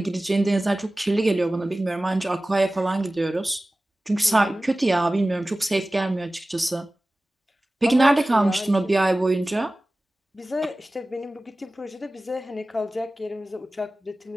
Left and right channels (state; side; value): normal; both; correlation 0.97